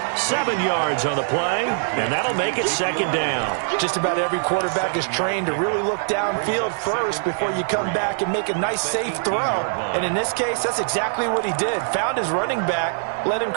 7 yards on the play, and that'll make it 2nd down. Just about every quarterback is trained to really look downfield first before you come back and make a nice, safe throw. And in this case, that's exactly what he did. Found his running back, let him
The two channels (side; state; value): left; silent; digital silence